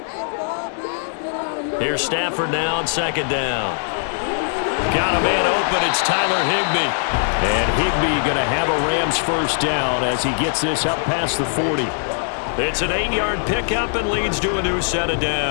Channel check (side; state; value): right; silent; digital silence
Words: Here's Stafford now on 2nd down. Got a man open. It's Tyler Higbee. And Higbee going to have a Rams first down as he gets this up past the 40. It's an 8-yard pickup and leads to a new set of